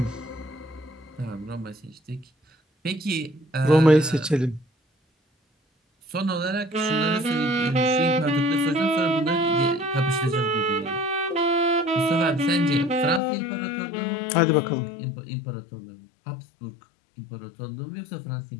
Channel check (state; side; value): drops out; right; at 13.2 s